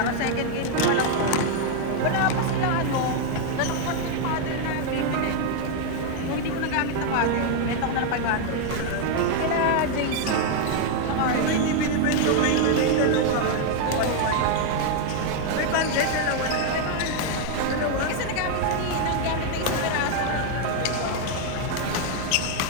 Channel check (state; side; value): different; both; correlation 0.00